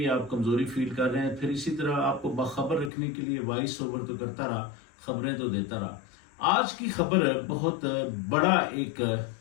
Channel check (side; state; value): right; drops out; at 2.9 s